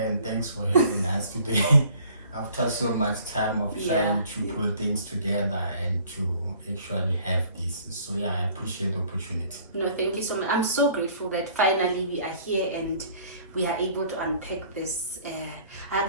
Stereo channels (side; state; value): both; inverted; correlation -0.55